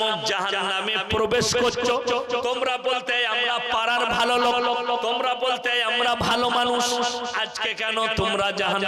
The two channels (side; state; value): both; identical; correlation 1.00